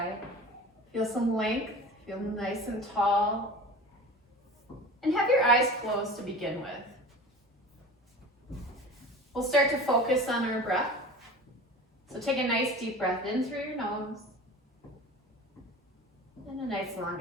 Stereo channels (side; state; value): both; normal; correlation 0.36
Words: Feel some length, feel nice and tall. And have your eyes closed to begin with. We'll start to focus on our breath. So take a nice deep breath in through your nose. And a nice long